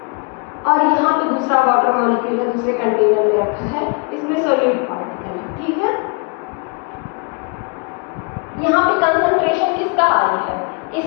और यहाँ पे दूसरा वाटर मॉलिक्यूल है, दूसरे कंटेनर में रखा है, इसमें सॉलिड पार्टिकल है, ठीक है। यहाँ पे कंसंट्रेशन किसका हाई है,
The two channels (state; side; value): quieter; right; 33.5 dB